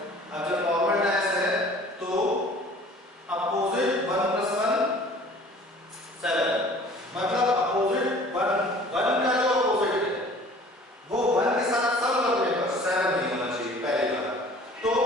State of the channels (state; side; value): normal; both; correlation 0.49